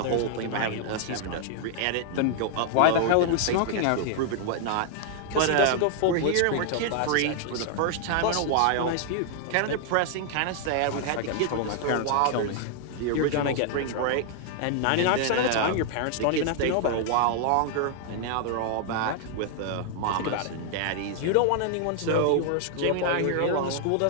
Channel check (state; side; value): different; both; correlation 0.00